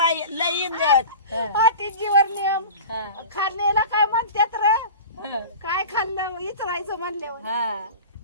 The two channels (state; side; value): inverted; both; correlation -0.35